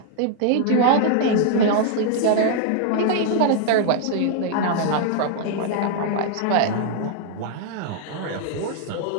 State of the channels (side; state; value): both; different; correlation -0.01